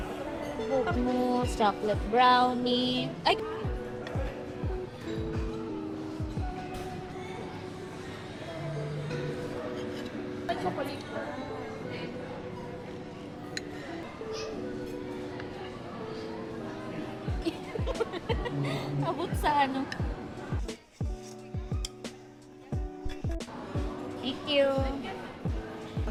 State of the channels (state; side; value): identical; both; correlation 1.00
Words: Book mousse, chocolate brownie. Ay! Ay, chocolate. Abot sa ano? Thank you.